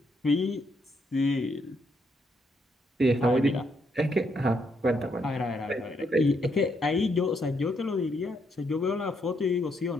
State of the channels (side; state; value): both; normal; correlation 0.76